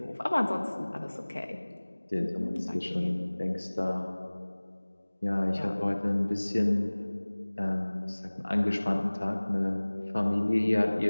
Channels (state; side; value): inverted; both; correlation -1.00